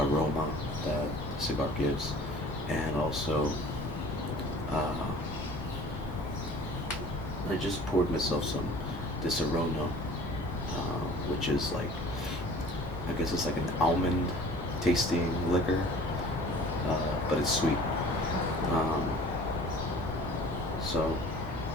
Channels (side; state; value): both; normal; correlation 0.47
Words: that the cigar gives, and also uh, I just poured myself some Disaronno, which is like, I guess it's like an almond tasting liquor, but it's sweet. Um, so,